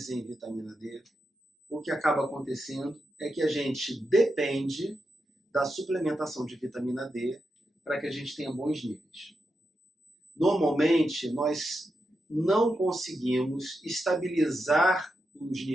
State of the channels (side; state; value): both; normal; correlation 0.87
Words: em vitamina D, o que acaba acontecendo é que a gente depende da suplementação de vitamina D para que a gente tenha bons níveis. Normalmente, nós não conseguimos estabilizar os